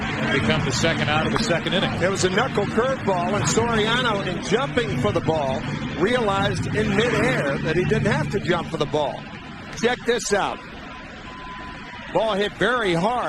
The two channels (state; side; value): identical; both; correlation 1.00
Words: become the second out of the second inning. There was a knuckle curveball, and Soriano, in jumping for the ball, realized in midair that he didn't have to jump for the ball. Check this out. Ball hit very